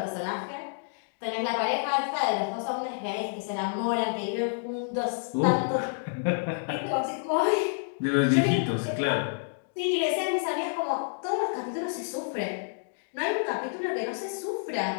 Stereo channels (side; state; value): right; silent; digital silence